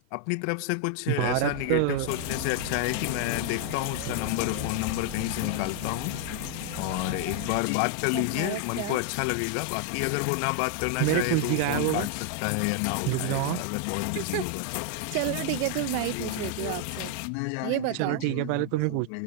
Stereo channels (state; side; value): different; both; correlation 0.00